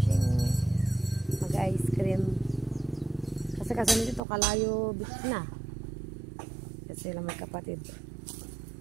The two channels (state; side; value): drops out; left; at 4.2 s